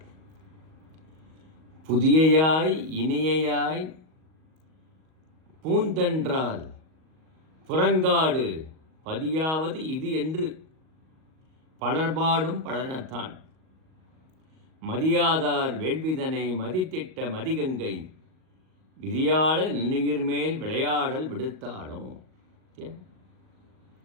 புதியையாய் இனியையாய் பூந்தென்றால் புறங்காடு பதியாவது இது என்று பலர்பாடும் பழனத்தான் மதியாதார் வேள்விதனை மதித்திட்ட மதிகங்கை விதியாள நுண்ணுயிர் மேல் விளையாடல் விடுத்தாடும்.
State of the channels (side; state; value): left; late; 38 ms